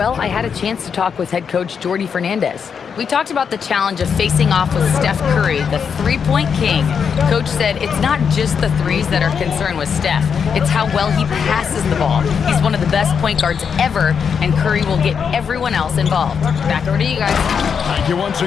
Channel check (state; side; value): quieter; right; 6.7 dB